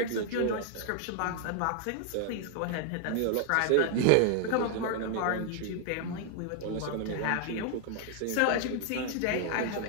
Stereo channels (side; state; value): both; different; correlation 0.00